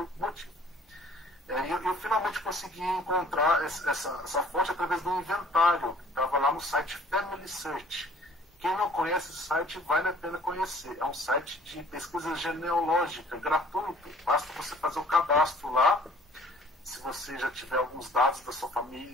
o motivo. Eu finalmente consegui encontrar essa fonte através do inventário que estava lá no site Family Search. Quem não conhece esse site, vale a pena conhecer. É um site de pesquisa genealógica, gratuito. Basta você fazer o cadastro lá. Se você já tiver alguns dados da sua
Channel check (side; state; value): both; normal; correlation 0.53